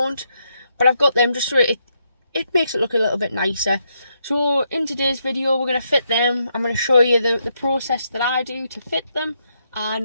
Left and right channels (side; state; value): both; inverted; correlation -0.79